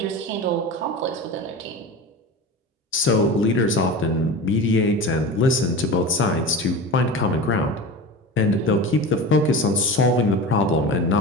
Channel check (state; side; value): normal; both; correlation 0.30